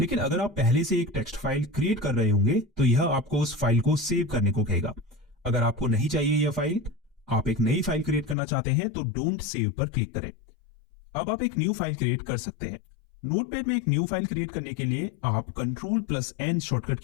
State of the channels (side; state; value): right; drops out; at 8.3 s